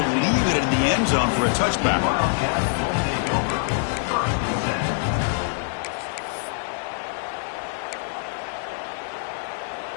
leave it in the end zone for a touchback.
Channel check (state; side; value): silent; right; 62 dB below the other